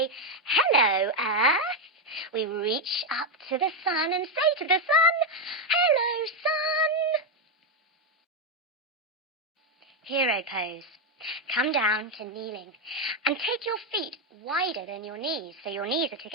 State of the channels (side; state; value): both; normal; correlation 0.04